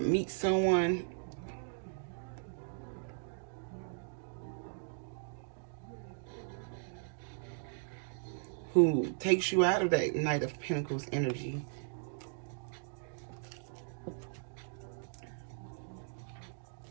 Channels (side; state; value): left; silent; digital silence